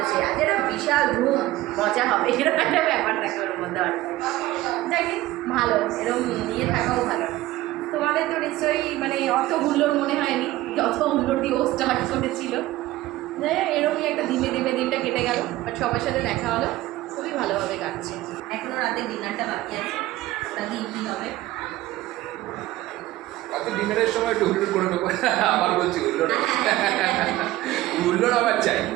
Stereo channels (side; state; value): left; quieter; 16.6 dB